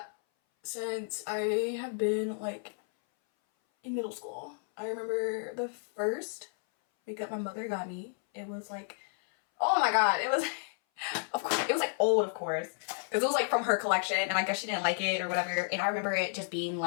since I have been like in middle school. I remember the first makeup my mother got me. It was like, oh my god, it was, of course, it was like old, of course, because it was like from her collection, and I guess she didn't like it or whatever. And I remember it just being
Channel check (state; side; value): silent; right; 57 dB below the other